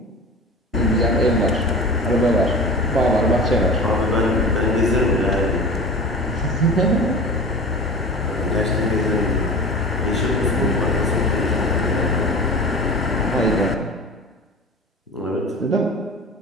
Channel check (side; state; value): both; normal; correlation 0.34